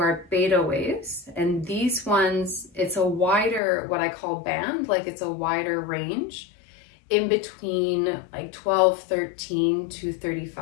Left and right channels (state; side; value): drops out; right; at 3.6 s